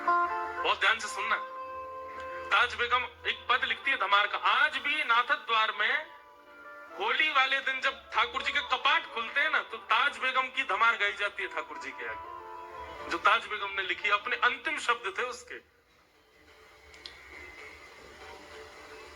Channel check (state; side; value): identical; both; correlation 1.00